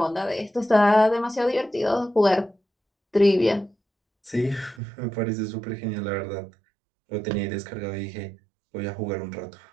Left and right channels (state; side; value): drops out; left; at 4.8 s